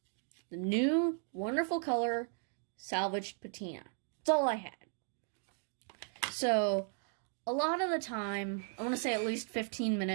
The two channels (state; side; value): silent; left; 54 dB below the other